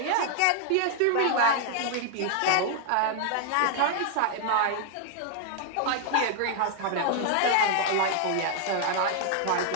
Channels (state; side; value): different; both; correlation 0.00